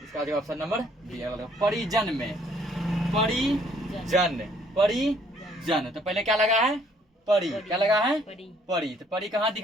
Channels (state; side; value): normal; both; correlation 0.63